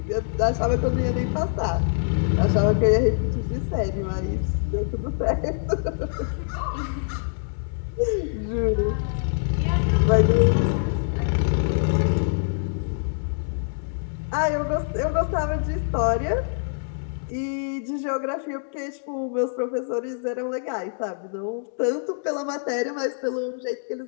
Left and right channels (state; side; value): silent; right; digital silence